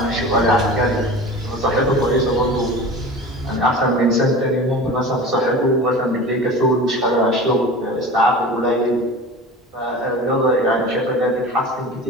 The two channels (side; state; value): both; normal; correlation 0.35